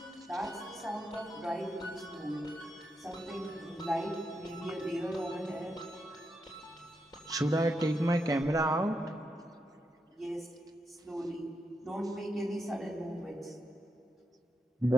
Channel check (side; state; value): both; normal; correlation 0.84